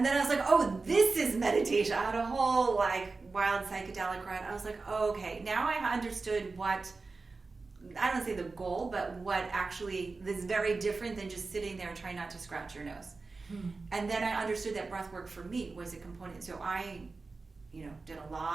then I was like, oh, this is meditation. I had a whole like wild psychedelic ride. I was like, oh, okay, now I understood what, I don't say the goal, but what actually is very different than just sitting there and trying not to scratch your nose. And then I understood that breath work for me was a component. So I did a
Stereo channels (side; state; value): left; quieter; 3.9 dB